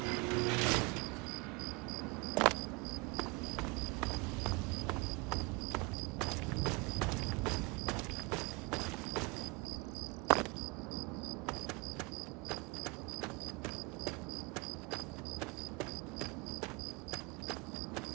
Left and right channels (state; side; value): quieter; left; 27.6 dB